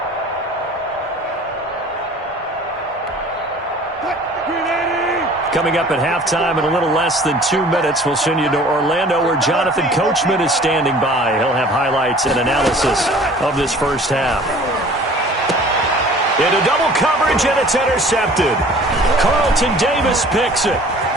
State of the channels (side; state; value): both; normal; correlation 0.48